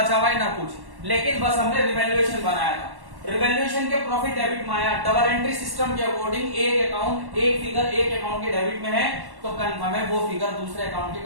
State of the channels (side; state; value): left; late; 1.1 ms